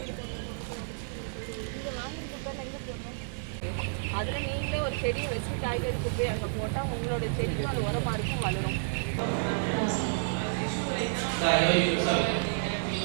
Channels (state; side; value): silent; left; digital silence